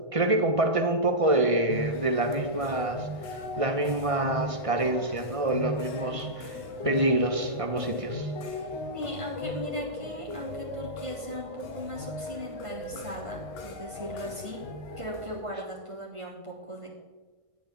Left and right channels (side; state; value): left; late; 1.5 ms